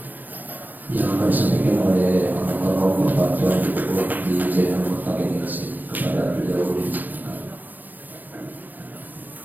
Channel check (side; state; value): left; late; 0.085 ms